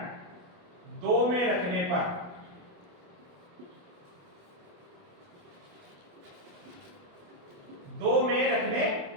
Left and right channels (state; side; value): late; left; 28 ms